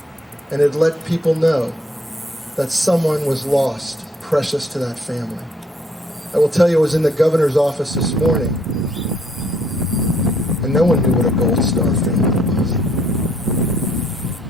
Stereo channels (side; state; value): both; normal; correlation 0.66